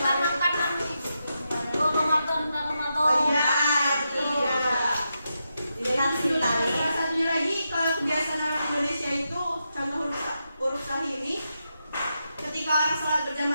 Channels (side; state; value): both; inverted; correlation -0.86